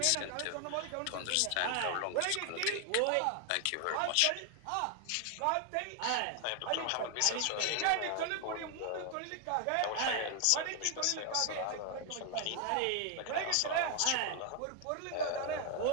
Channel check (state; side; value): different; both; correlation 0.00